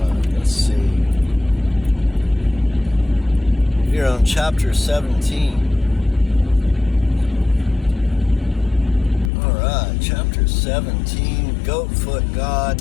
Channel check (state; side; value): drops out; right; at 9.3 s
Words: Let's see. We're on chapter 17. Alright, chapter 17, Goatfoot